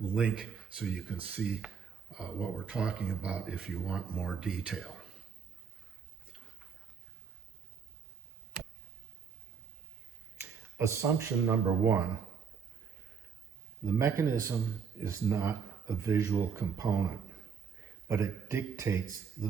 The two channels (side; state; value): left; quieter; 6.4 dB